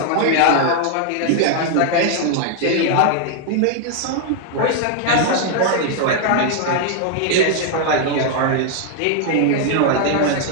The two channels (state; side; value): different; both; correlation 0.00